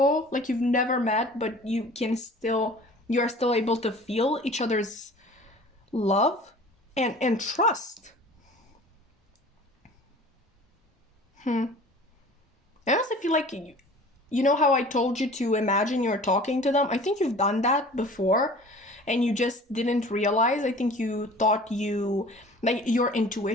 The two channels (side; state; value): both; normal; correlation 0.45